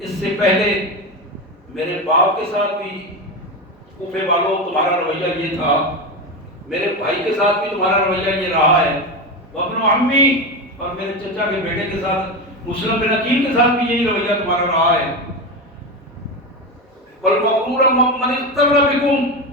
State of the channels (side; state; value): both; normal; correlation 0.18